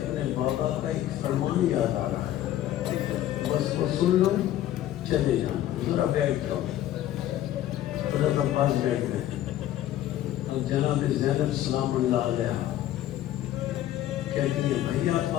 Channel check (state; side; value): quieter; right; 12.8 dB